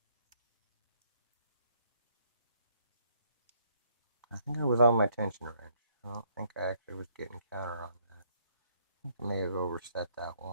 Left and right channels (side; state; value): both; inverted; correlation -0.69